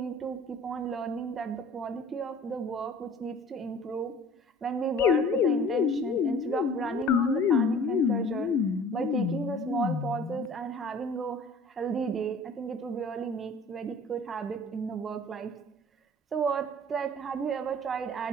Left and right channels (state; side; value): normal; both; correlation 0.48